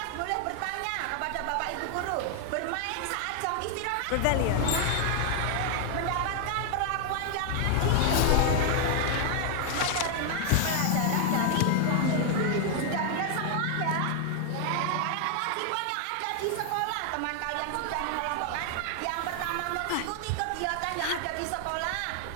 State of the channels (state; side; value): different; both; correlation 0.00